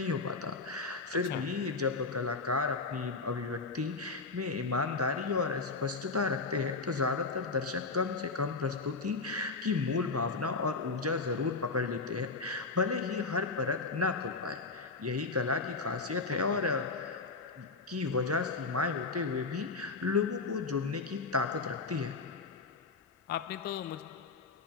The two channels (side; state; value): right; quieter; 4.0 dB